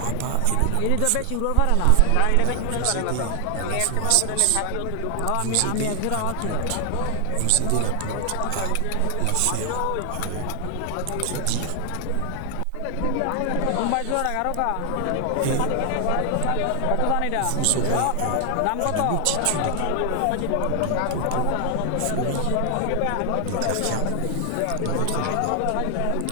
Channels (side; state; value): both; different; correlation 0.00